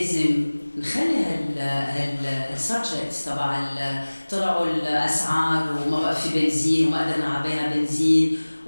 نخلي هالسبجكتس تبع طلعوا الاسعار وما بقى في بنزين وما قدرنا نعبيها بنزين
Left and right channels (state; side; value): inverted; both; correlation -1.00